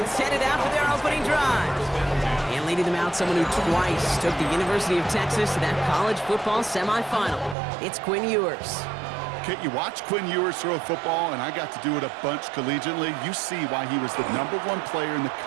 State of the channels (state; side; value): drops out; left; at 7.6 s